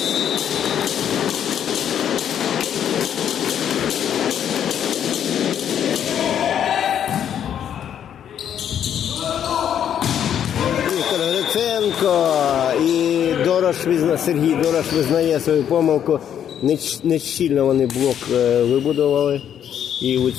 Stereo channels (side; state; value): right; quieter; 9.4 dB